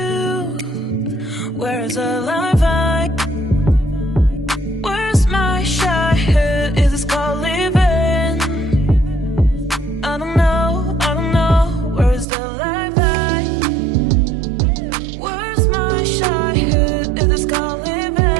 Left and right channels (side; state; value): left; drops out; at 12.2 s